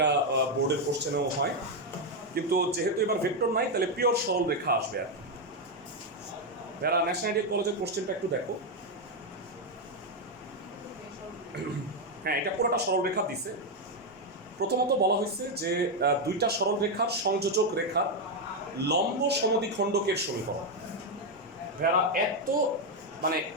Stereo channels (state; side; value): normal; both; correlation 0.04